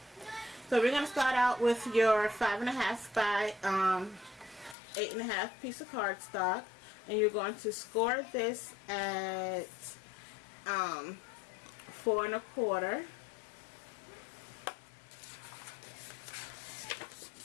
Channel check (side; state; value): right; drops out; at 4.8 s